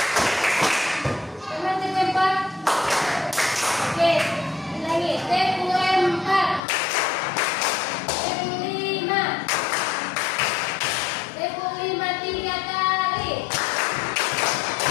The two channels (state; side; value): drops out; right; at 6.6 s